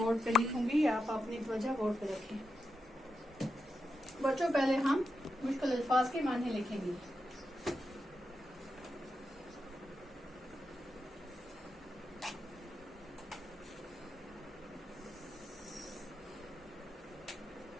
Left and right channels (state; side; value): normal; both; correlation 0.87